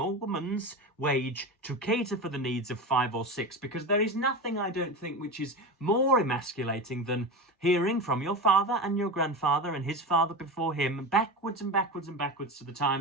woman's wage to cater for the needs of 5 or 6, because there is nothing, I don't think, which is more emasculating than hearing from your father and your grandfather and his father before him, backwards and backwards and backwards to the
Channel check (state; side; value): normal; both; correlation 0.24